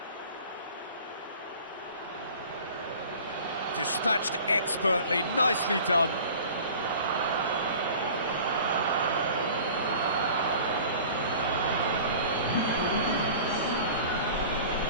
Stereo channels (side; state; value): both; inverted; correlation -0.44